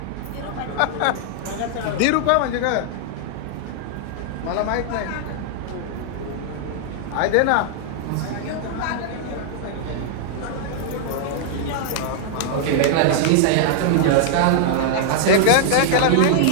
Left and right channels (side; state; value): both; different; correlation -0.01